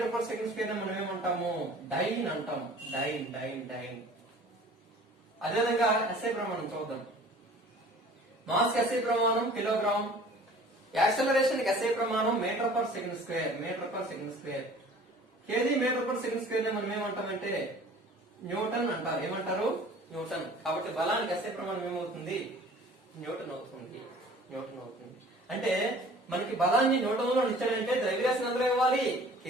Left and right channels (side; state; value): both; normal; correlation 0.48